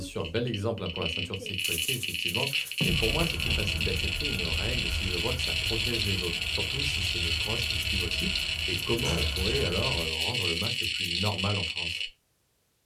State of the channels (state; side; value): identical; both; correlation 1.00